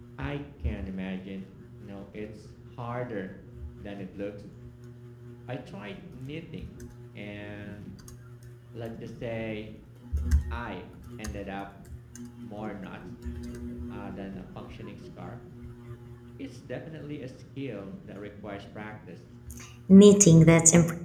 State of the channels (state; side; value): identical; both; correlation 1.00